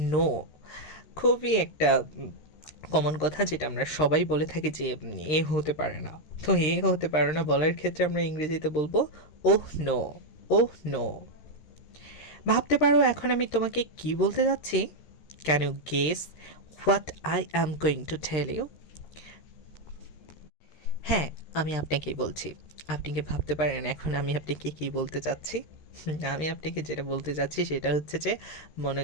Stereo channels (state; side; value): late; right; 13 ms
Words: no. খুবই একটা কমন কথা যেটা আমরা সবাই বলে থাকি যে এ হতে পারে না। তো এ হতে পারে না বলার ক্ষেত্রে আমরা ইংরেজিতে বলবো ওহ নো। Oh no. ভাবতে পারো এখন আমি তোমাকে কি বলতে যাচ্ছি? Can you guess what I am going to tell you? হ্যাঁ আমি আপনাকেই বলছি। আপনি কি ভাবতে পারেন এখন আমি আপনাকে কী বলতে চাচ্ছি? আমি আপনাকে যেটা বলতে চাচ্ছি সেটা হচ্ছে যে